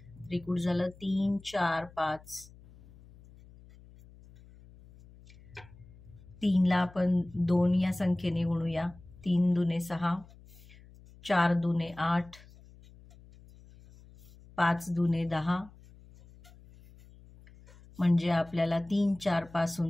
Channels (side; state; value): left; noise; hum, 23 dB below the sound